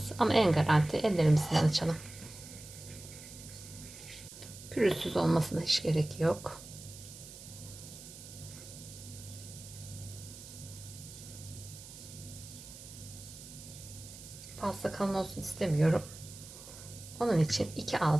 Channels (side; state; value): right; noise; hiss, 15 dB below the sound